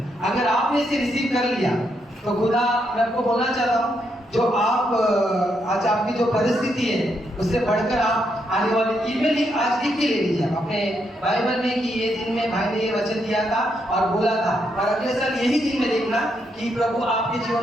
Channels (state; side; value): normal; both; correlation 0.78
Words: अगर आपने इसे रिसीव कर लिया तो खुदा, मैं आपको बोलना चाहता हूँ, जो आप आज आपकी जो परिस्थिति है उससे बढ़कर आप आने वाले ईमेल आज लिख के ले लीजिए अपने बाइबल में कि ये दिन में भाई ने ये वचन दिया था और बोला था, और अगले साल यही दिन में लिखना कि प्रभु आपके